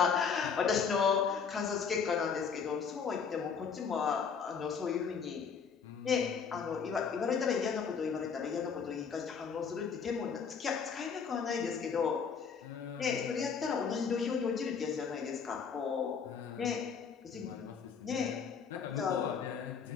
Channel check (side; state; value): right; quieter; 6.3 dB